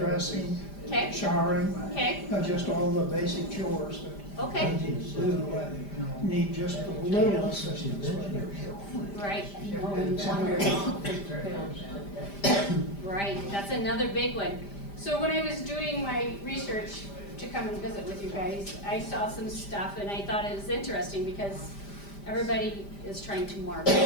okay, showering, okay, just all the basic chores that okay, you need to do. Need just a little assistance with it. right, And right, that's another big one. So when I was doing my research to come and visit with you guys, I saw some stuff and I thought it was interesting because everybody is trying to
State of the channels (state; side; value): late; right; 5.0 ms